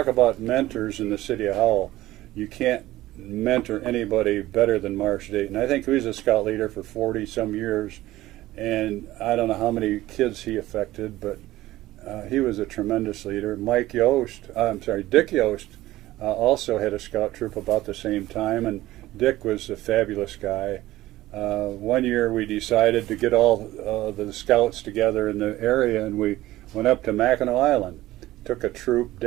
about mentors in the city of Howell. You can't mentor anybody better than Marsh Dayton. I think he was a scout leader for 40-some years, and I don't know how many kids he affected, but he was a tremendous leader. Dick Yost also had a scout troop about the same time, and Dick was a fabulous guy. One year we decided to get all the scouts together in the area, and we went up to Mackinac Island. Took a troop.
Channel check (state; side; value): quieter; left; 16.3 dB